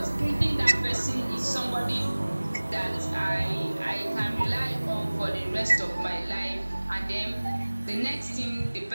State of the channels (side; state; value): both; inverted; correlation -1.00